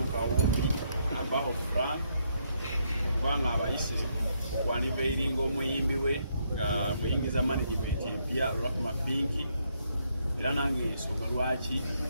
Kawumbi abaho Frank kubanga abayise okwaniveiringa omuyimbi we nga muyingiza management empya Rahma Pinki era nange ensonga lwaki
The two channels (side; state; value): both; inverted; correlation -0.75